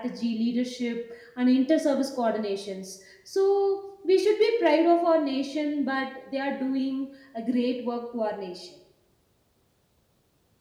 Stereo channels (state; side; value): identical; both; correlation 1.00